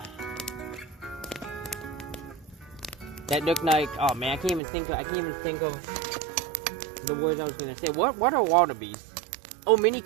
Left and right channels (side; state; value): left; drops out; at 4.6 s